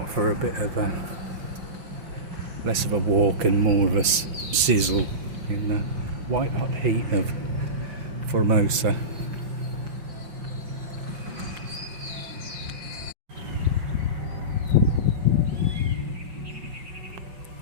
for a bit of a less of a walk and more of a sizzle in the white hot heat of Formosa.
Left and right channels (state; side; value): late; left; 5.6 ms